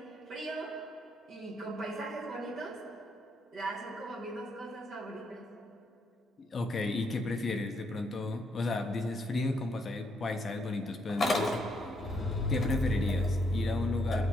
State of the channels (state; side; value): normal; both; correlation 0.74